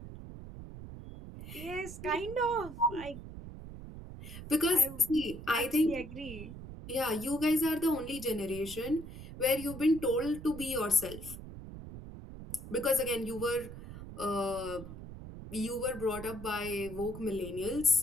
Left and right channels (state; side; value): noise; right; rumble, 12 dB below the sound